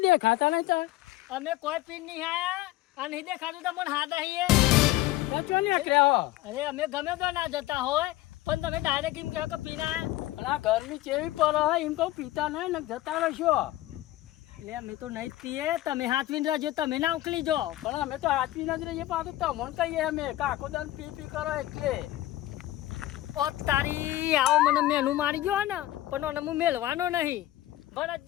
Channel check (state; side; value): quieter; right; 16.0 dB